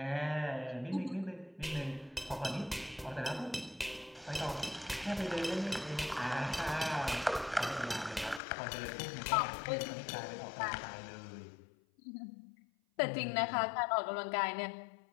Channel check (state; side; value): drops out; right; at 8.4 s